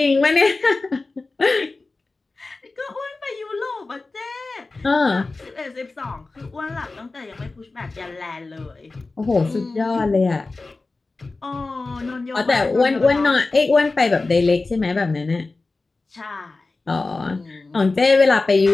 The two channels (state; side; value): quieter; right; 3.5 dB